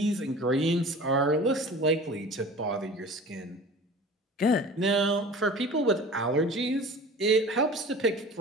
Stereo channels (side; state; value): both; normal; correlation 0.40